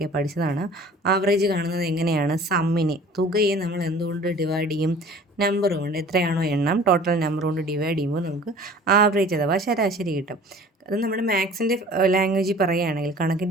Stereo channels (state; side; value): normal; both; correlation 0.47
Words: പഠിച്ചതാണ്. ആവറേജ് കാണുന്നത് എങ്ങനെയാണ്? സമ്മിനെ, തുകയെ നമ്മൾ എന്തുകൊണ്ട് ഡിവൈഡ് ചെയ്യും? നമ്പർ കൊണ്ട്, എത്രയാണോ എണ്ണം ടോട്ടൽ നമ്പർ കൊണ്ട് ഡിവൈഡ് ചെയ്യുമ്പോൾ നമുക്ക് ആവറേജ് അഥവാ ശരാശരി കിട്ടും. അത് നമ്മുടെ മാത്സിൻ്റെ ലാംഗ്വേജിൽ പറയുകയാണെങ്കിൽ,